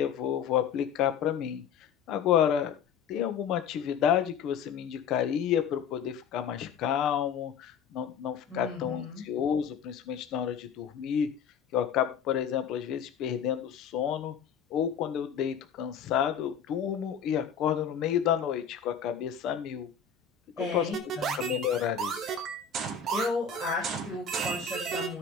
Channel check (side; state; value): right; quieter; 6.8 dB